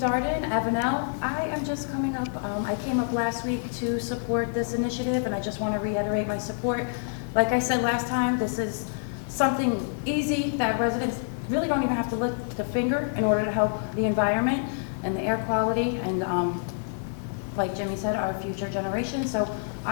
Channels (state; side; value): silent; right; digital silence